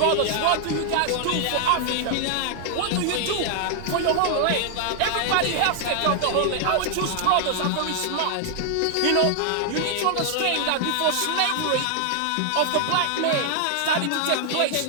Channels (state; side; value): different; both; correlation 0.00